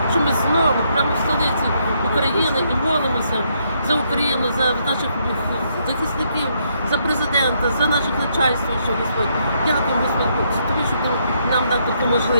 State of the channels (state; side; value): inverted; both; correlation -0.74